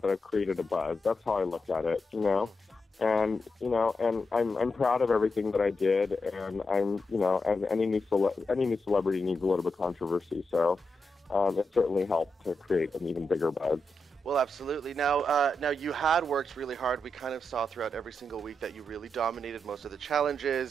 I've created a buzz. That's how I looked at it, And, and I'm proud of everything that I did, and and any new celebrity needs a little bit of controversy, so it certainly helped to create an even bigger buzz. Well, absolutely. Now you had worked really hard. We kind of saw throughout every single week that you really dominated most of the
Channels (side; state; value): both; normal; correlation 0.86